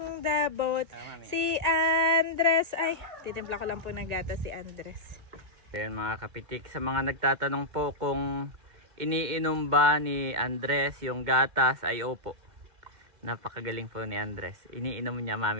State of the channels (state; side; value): late; left; 2.1 ms